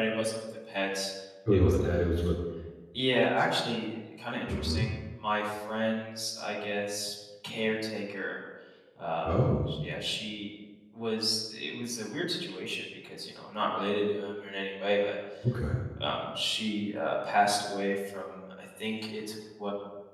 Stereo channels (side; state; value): both; identical; correlation 1.00